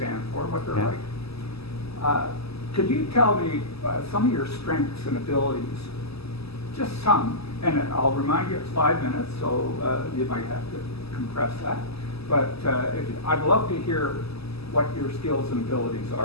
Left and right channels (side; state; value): right; late; 0.78 ms